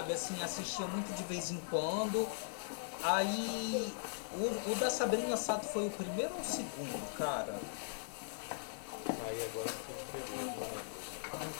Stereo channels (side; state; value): right; silent; 51 dB below the other